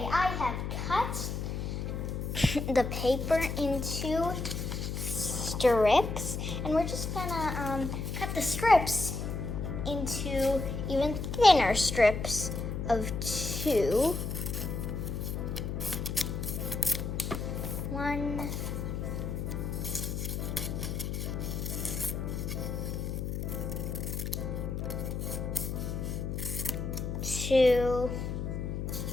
I have cut the paper into strips, and we're just gonna cut the strips into even thinner strips of 2. 1, 2,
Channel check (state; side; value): noise; left; hum, 3 dB below the sound